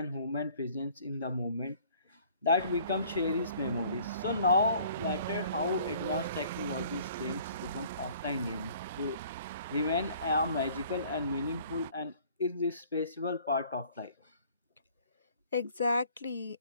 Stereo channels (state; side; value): inverted; both; correlation -0.55